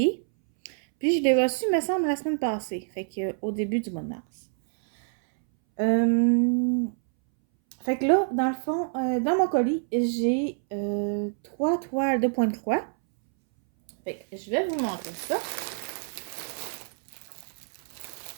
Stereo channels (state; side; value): silent; left; 60 dB below the other